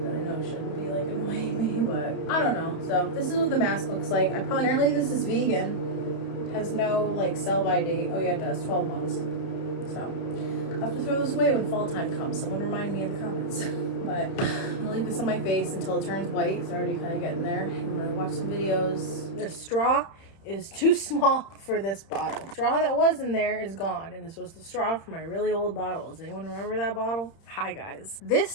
that I know shouldn't be like annoying me, but I don't know. So this is what the mask looks like. Apparently this is vegan, has no like sell by date. Oh yeah, it does, 12 months. So I'll have to throw this away when fall time comes. Someone remind me in the comments. But I'm gonna leave this on my face until it turns white. It's already kind of getting there. I'm gonna watch some videos. The straw is too small for this bottle. The straw that was in there is gone, and this was the straw for my really old bottle. Does anyone remember that bottle? Hi guys.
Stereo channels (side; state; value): right; late; 30 ms